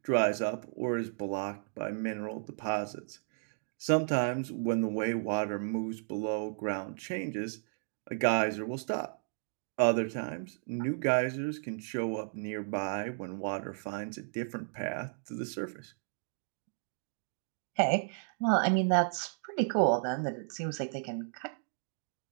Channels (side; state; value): left; silent; digital silence